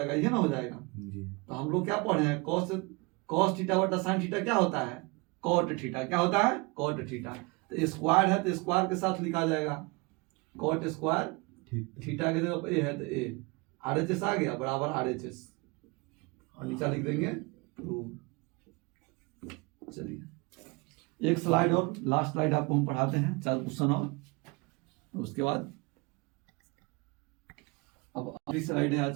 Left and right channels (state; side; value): quieter; left; 26.9 dB